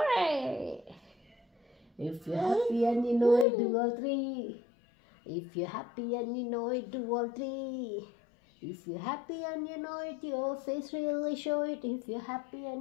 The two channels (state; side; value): drops out; right; at 3.5 s